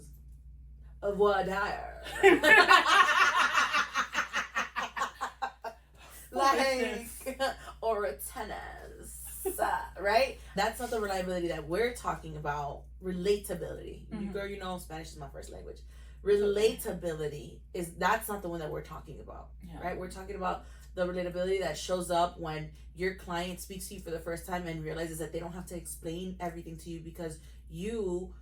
Of what like or a tennis, right? That's not the reliability that we're talking about. Relatability. Girl, you know Spanish is my first language. Relatability that's not the one that we're talking about, right? We're talking about the relatability that shows up when your client speaks to you for the first time and realizes that they don't have to explain everything to you because you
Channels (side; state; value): both; identical; correlation 1.00